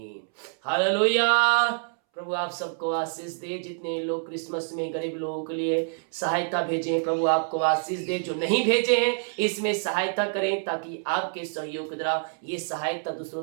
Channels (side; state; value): left; silent; 60 dB below the other